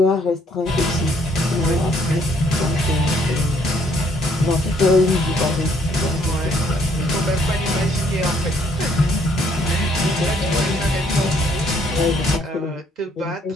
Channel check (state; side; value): normal; both; correlation 0.66